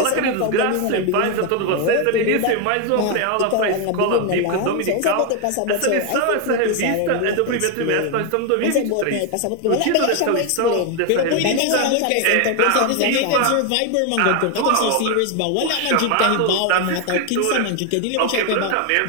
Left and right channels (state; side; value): different; both; correlation 0.01